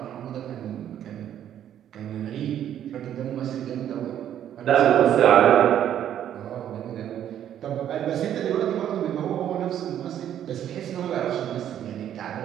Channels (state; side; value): quieter; left; 10.5 dB